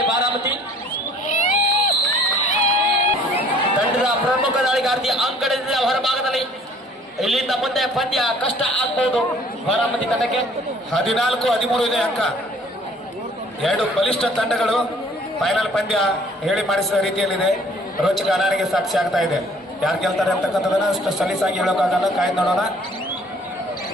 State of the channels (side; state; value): both; normal; correlation 0.55